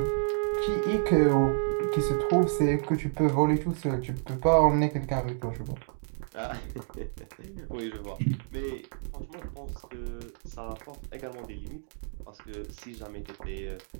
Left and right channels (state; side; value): silent; left; digital silence